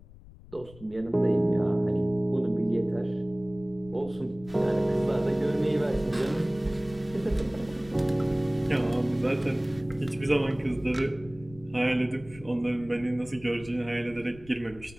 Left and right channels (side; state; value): left; noise; rumble, 20 dB below the sound